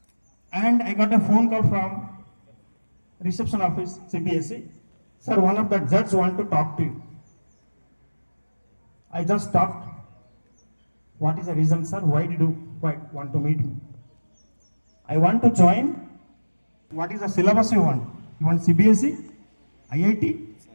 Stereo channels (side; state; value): both; inverted; correlation -1.00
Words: and I got a phone call from reception office CBSE. Sir, one of the judges want to talk to you. I just talked. What is the reason, sir? Why did you want to meet me? I want to join. What is the syllabus you want? You want CBSE, IIT,